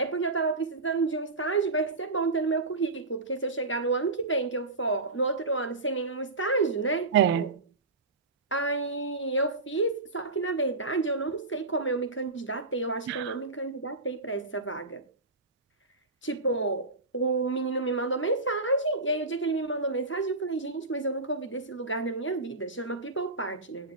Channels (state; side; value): quieter; left; 3.3 dB